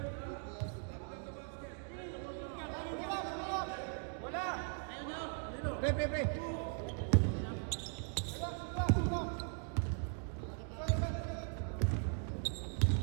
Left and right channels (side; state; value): left; silent; 52 dB below the other